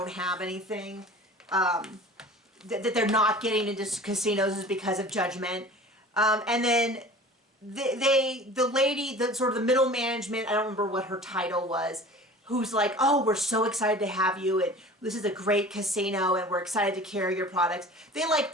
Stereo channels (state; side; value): normal; both; correlation 0.41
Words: have anything. That they're not getting into casinos is because of judgment. And then the lady, the sort of the middle management, I don't remember what her title was, who's like, oh, we're so excited to have you, and this is a great casino, and we're excited to carry your products. They like